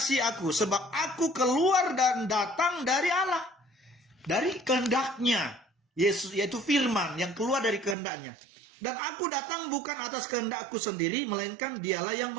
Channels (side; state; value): left; drops out; at 8.0 s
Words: aku, sebab aku keluar dan datang dari Allah. Dari kehendaknya. Yesus, yaitu firman yang keluar dari kehendaknya. Dan aku datang bukan atas kehendakku sendiri, melainkan dialah yang